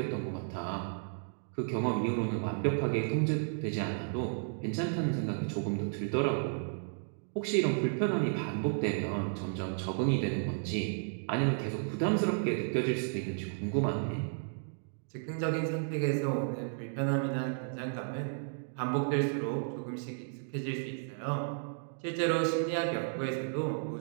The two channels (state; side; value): silent; left; digital silence